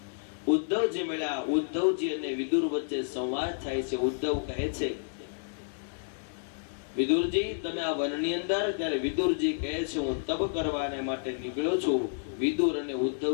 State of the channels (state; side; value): silent; right; digital silence